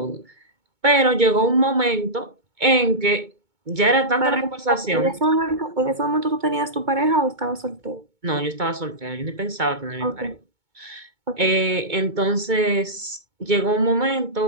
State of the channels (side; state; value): left; late; 2.2 ms